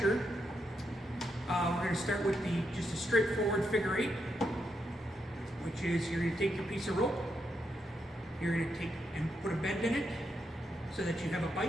we're going to start with just a straightforward figure 8, which is you're going to take your piece of rope, you're going to take and put a bend in it so that you have a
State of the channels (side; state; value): both; normal; correlation 0.81